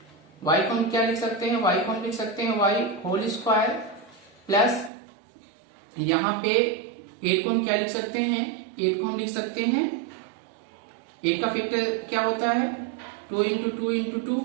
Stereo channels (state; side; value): drops out; left; at 4.9 s